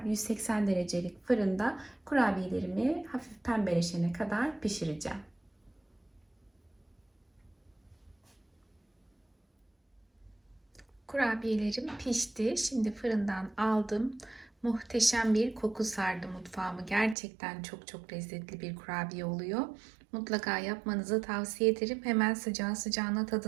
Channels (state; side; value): drops out; left; at 17.2 s